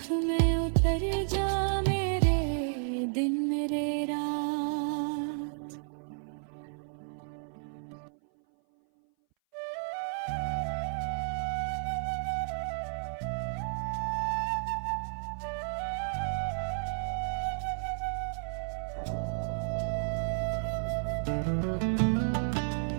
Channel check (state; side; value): silent; left; 56 dB below the other